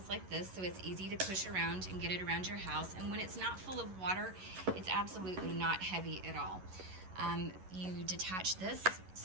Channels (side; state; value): left; late; 11 ms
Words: like this, so it's easy to push around and get it around your house. And when it's not full of water, it's absolutely not heavy at all. You detach this